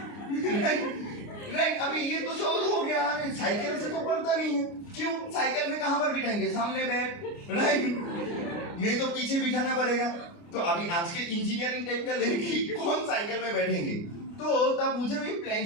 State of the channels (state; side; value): late; right; 29 ms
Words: राइट। अभी ये तो शौक हो गया, साइकिल से तो पड़ता नहीं है, क्यों, साइकिल में कहां पर बिठाएंगे, सामने बैठ, राइट, नहीं तो पीछे बिठाना पड़ेगा। तो अभी आज के इंजीनियरिंग टाइप का लड़की कौन साइकिल में बैठेंगे। तो तब मुझे भी प्लान